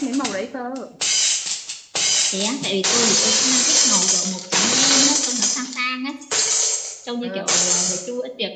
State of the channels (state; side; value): identical; both; correlation 1.00